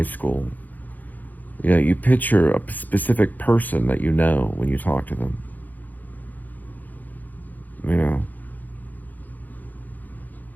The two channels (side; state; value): right; late; 0.083 ms